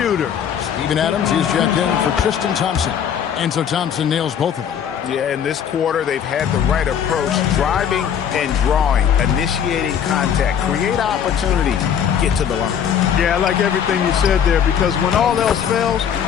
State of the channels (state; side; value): quieter; right; 8.4 dB